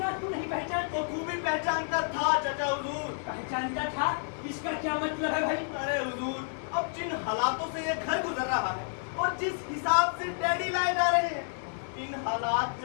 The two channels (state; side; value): silent; right; 58 dB below the other